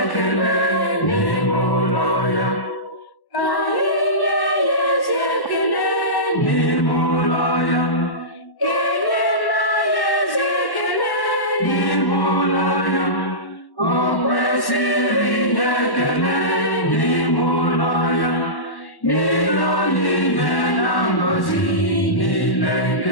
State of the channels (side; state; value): right; late; 1.1 ms